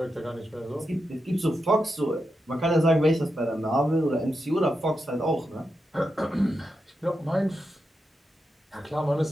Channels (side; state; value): both; normal; correlation 0.87